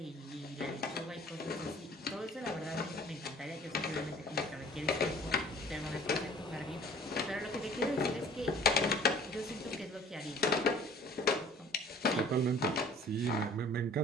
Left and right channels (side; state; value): both; normal; correlation 0.50